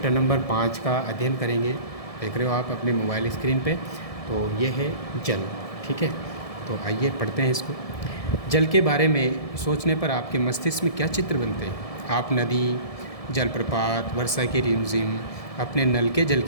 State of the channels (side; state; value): right; late; 1.7 ms